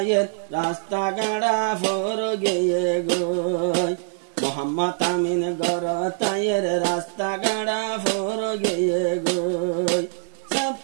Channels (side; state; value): left; silent; 63 dB below the other